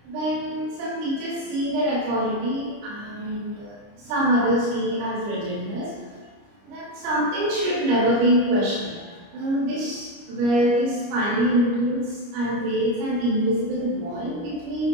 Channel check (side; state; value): left; late; 29 ms